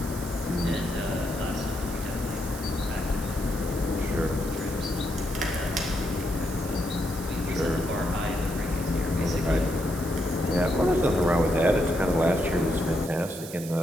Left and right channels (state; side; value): noise; right; hiss, 13 dB below the sound